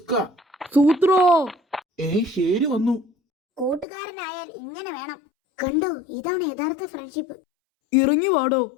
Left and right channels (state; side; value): drops out; right; at 3.9 s